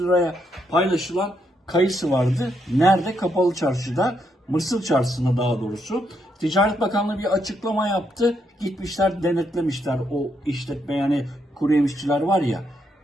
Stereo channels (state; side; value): normal; both; correlation 0.78